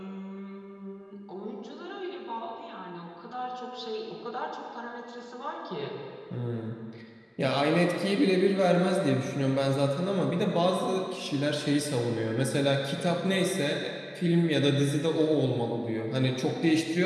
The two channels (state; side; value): identical; both; correlation 1.00